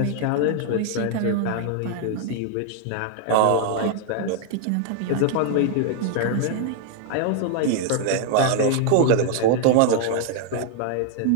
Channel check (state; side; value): different; both; correlation 0.00